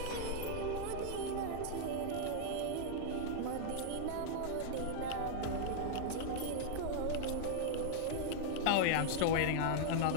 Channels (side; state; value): both; different; correlation -0.01